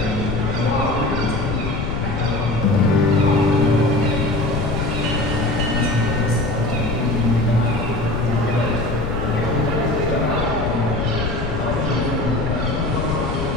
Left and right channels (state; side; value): noise; left; rumble, 3 dB below the sound